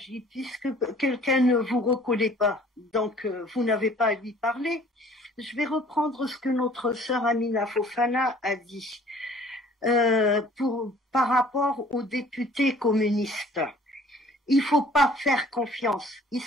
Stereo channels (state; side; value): normal; both; correlation 0.53